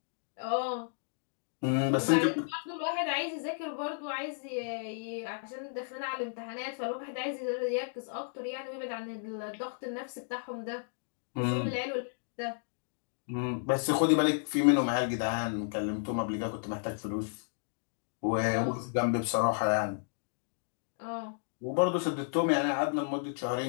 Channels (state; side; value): silent; right; digital silence